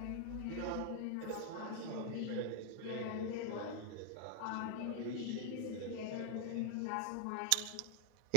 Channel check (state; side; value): different; both; correlation 0.00